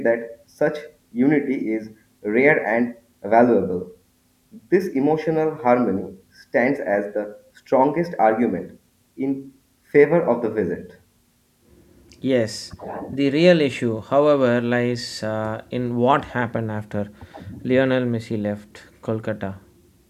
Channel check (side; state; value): both; identical; correlation 1.00